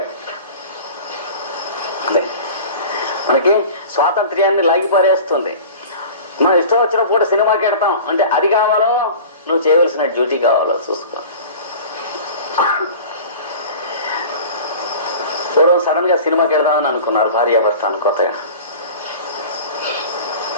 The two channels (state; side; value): inverted; both; correlation -0.39